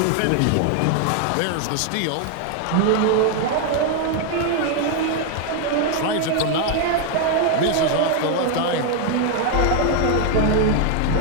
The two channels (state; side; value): different; both; correlation 0.00